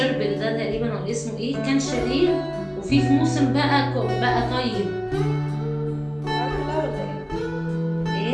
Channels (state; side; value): identical; both; correlation 1.00